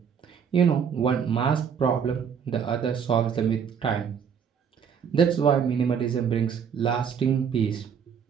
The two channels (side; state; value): left; quieter; 7.2 dB